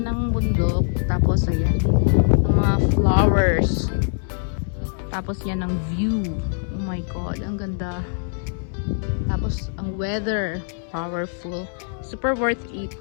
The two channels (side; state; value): right; silent; 64 dB below the other